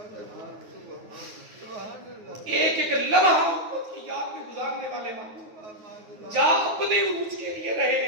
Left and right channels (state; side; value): late; left; 9.4 ms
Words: ایک ایک لمحہ امت کی یاد میں گزارنے والے محبوب جا اپنے عروج کے لیے رہے